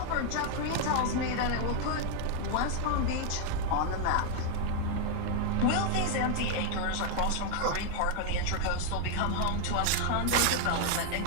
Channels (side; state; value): both; different; correlation 0.00